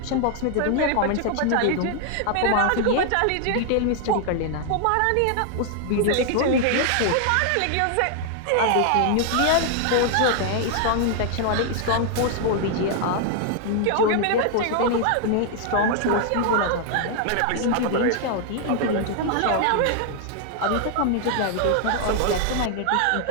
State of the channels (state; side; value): different; both; correlation 0.00